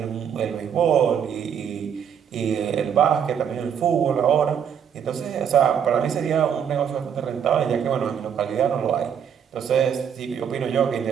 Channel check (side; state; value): left; quieter; 8.1 dB